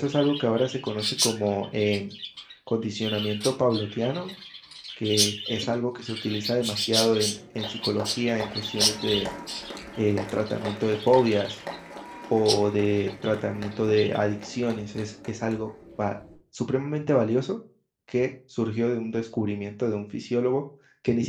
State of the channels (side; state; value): both; identical; correlation 1.00